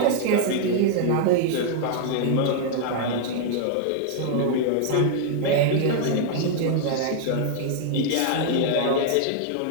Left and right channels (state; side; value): different; both; correlation -0.01